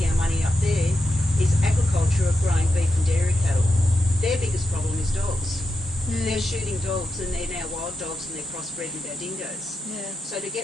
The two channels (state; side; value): normal; both; correlation 0.88